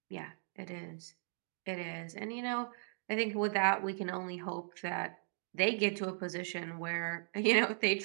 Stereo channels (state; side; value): silent; left; digital silence